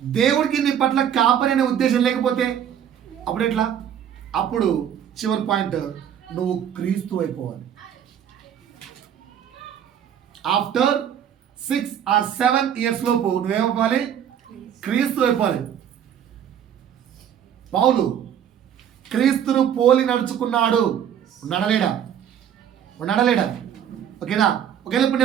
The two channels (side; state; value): left; quieter; 9.2 dB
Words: నీ పట్ల కాపరి అనే ఉద్దేశం లేకపోతే అప్పుడు ఎట్లా? అప్పుడు చివరి పాయింట్, నువ్వు క్రీస్తు అయిపోవాలి. ఆఫ్టర్ 6 or 7 years లోపు నువ్వేమైపోవాలి? క్రీస్తు అయిపోవాలి. పౌలు క్రీస్తును పోలి నడుచుకున్నాడు. నడలేడా? నడలేడా? ఓకేనా? ఒకవేళ ఇప్పుడు